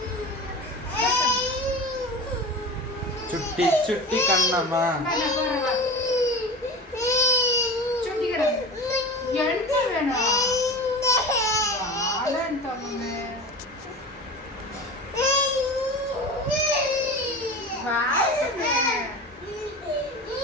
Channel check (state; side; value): normal; both; correlation 0.32